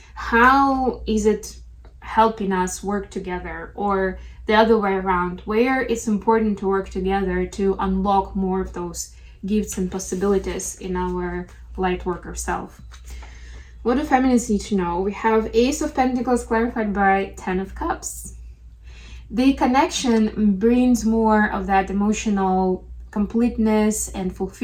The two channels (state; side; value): identical; both; correlation 1.00